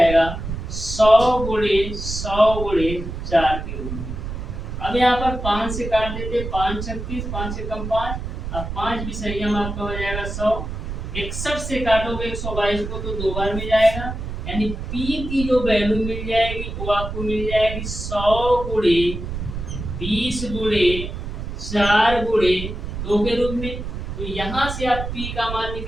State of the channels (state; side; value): noise; right; rumble, 6 dB below the sound